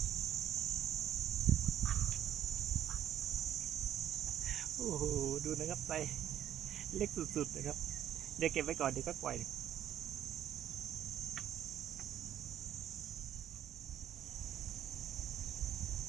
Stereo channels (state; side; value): quieter; left; 10.7 dB